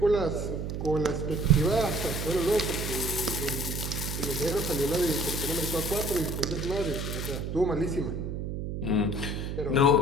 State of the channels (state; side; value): noise; right; hum, 4 dB below the sound